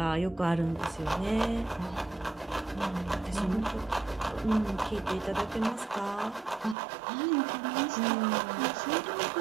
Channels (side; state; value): left; drops out; at 6.8 s